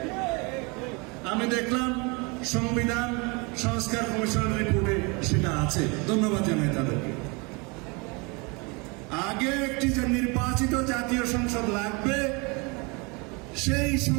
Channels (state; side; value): quieter; left; 29.4 dB